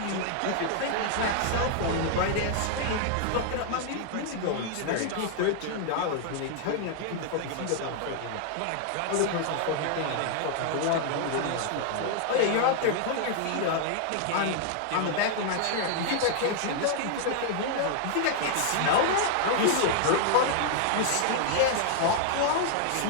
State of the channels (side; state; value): both; different; correlation -0.01